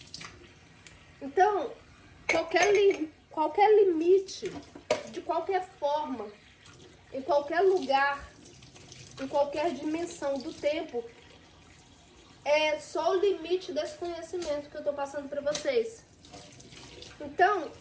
Então, qualquer limite, de qualquer forma, em qualquer lugar, em qualquer dimensão do tempo, é só o limite desse conhecimento que eu estou passando para vocês. Então,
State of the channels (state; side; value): identical; both; correlation 1.00